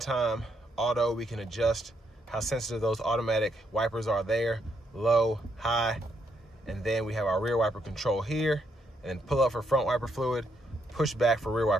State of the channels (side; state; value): both; normal; correlation 0.75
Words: auto, we can adjust how sensitive those automatic wipers are there. Low, high. And then we have our rear wiper control here. And then pull up for front wiper fluid. Push back for rear